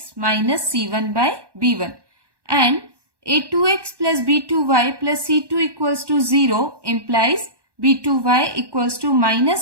minus c1 by b1. And a2x plus b2y plus c2 equals to 0 implies b2y equals to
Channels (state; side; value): late; left; 1.1 ms